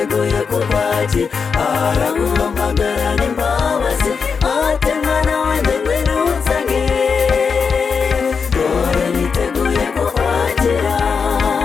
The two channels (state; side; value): quieter; right; 5.6 dB